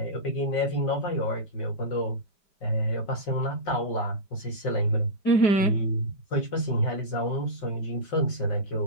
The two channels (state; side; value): late; right; 5.5 ms